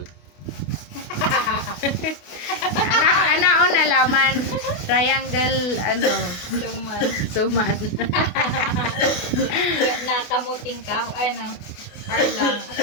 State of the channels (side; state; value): right; late; 28 ms